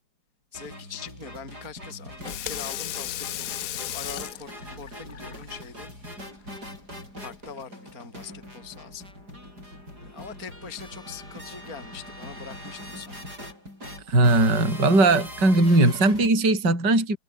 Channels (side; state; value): left; late; 4.8 ms